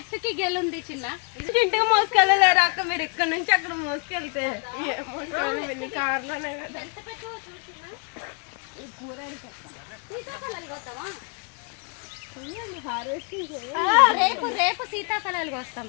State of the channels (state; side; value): quieter; right; 38.7 dB